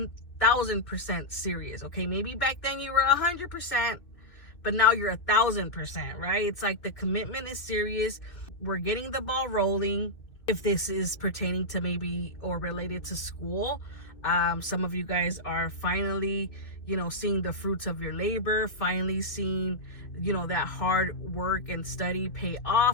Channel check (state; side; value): late; right; 2.7 ms